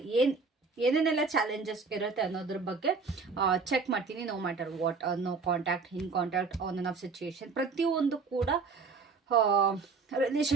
ಏನೇನೆಲ್ಲ ಚಾಲೆಂಜಸ್ ಇರುತ್ತೆ ಅನ್ನೋದ್ರ ಬಗ್ಗೆ ಚೆಕ್ ಮಾಡ್ತೀನಿ. No matter what, no contact, in contact, on on off situation, ಪ್ರತಿಯೊಂದು ಕೂಡ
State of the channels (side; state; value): left; quieter; 4.6 dB